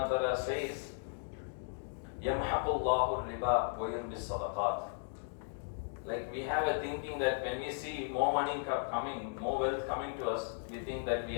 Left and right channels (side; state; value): right; silent; digital silence